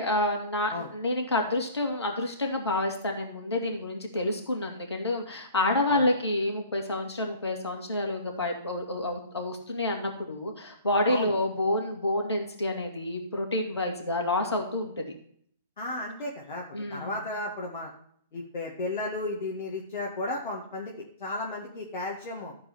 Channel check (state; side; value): inverted; both; correlation -0.45